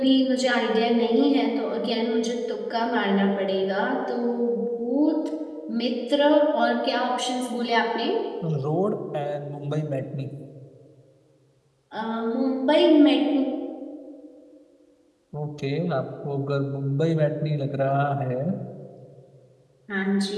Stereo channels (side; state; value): both; identical; correlation 1.00